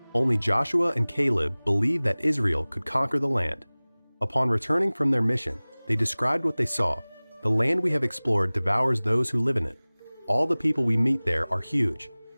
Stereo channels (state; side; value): inverted; both; correlation -1.00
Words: Only Joshua and Caleb believed that Israel could conquer the land. Upon returning from their mission, they described what they saw. "The land we have explored devours those who live in it. All the people we meet there are huge.